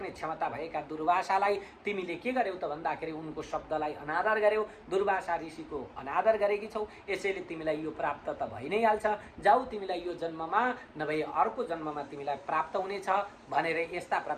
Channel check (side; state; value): both; identical; correlation 1.00